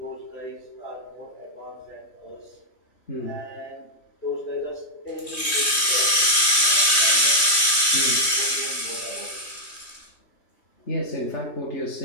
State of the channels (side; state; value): right; late; 3.2 ms